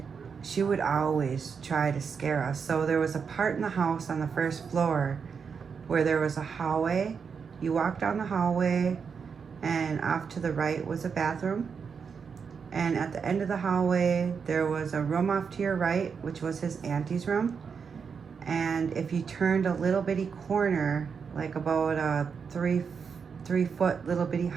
she would always try to scare us. So there was a part in the house on the first floor where there was a hallway. You walked down the hallway, and off to the right was a bathroom. And at the end of the hallway, there was a room off to your right, which was his auntie's room. And if you turned a little bitty corner, like about a three foot little bitty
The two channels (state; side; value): quieter; left; 6.1 dB